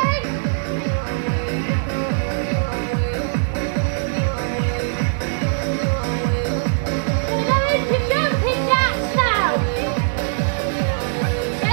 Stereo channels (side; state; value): left; silent; digital silence